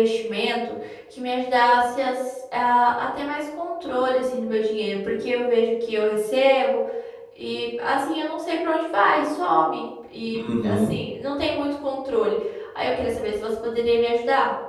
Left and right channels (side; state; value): both; identical; correlation 1.00